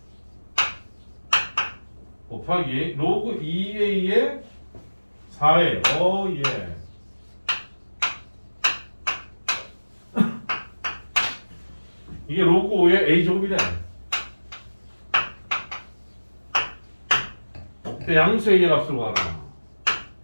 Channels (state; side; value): inverted; both; correlation -1.00